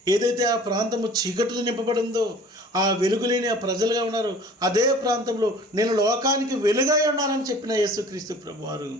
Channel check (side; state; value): both; normal; correlation 0.47